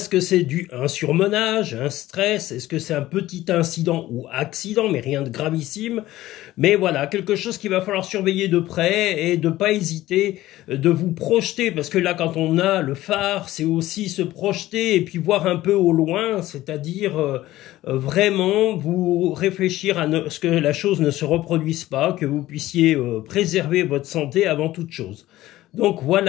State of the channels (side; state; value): right; quieter; 15.8 dB